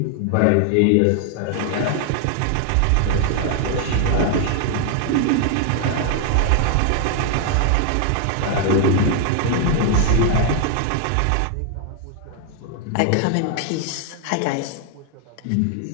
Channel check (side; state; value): both; different; correlation 0.00